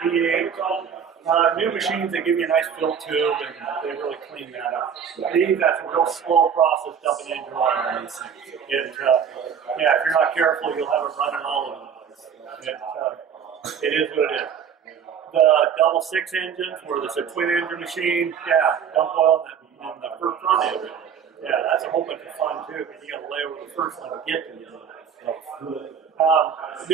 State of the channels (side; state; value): left; quieter; 7.5 dB